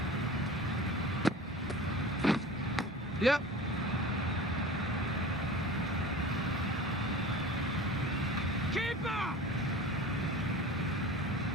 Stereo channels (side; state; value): both; normal; correlation 0.38